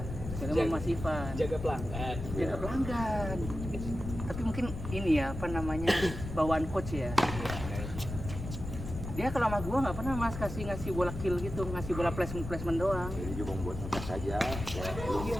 Jadi sama Mas Ivan. Jaga pelanggan. Jaga pelanggan. Tapi mungkin ini ya apa namanya bawaan coach ya. Dia kalau sama gua nggak pernah mas ngasih bola kill gitu, ngasih bola placement doang. Jadi cuma buat ngetes aja, ya,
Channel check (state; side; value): noise; left; rumble, 7 dB below the sound